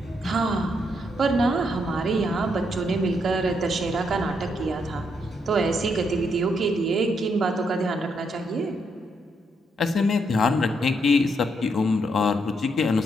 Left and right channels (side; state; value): both; normal; correlation 0.77